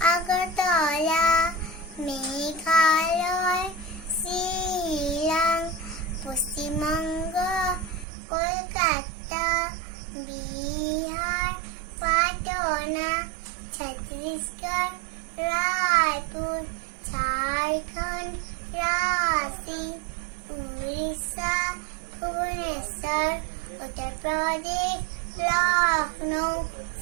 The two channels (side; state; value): left; drops out; at 8.1 s